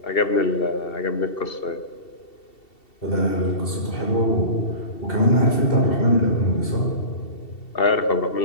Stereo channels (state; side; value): late; right; 2.7 ms